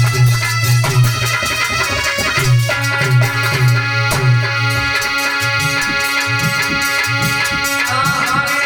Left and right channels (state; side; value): identical; both; correlation 1.00